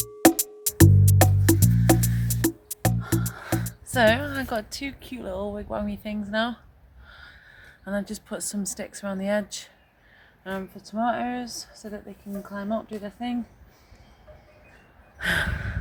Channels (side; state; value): both; identical; correlation 1.00